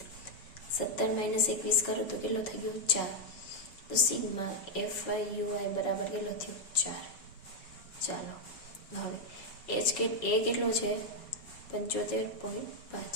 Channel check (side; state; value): right; late; 5.3 ms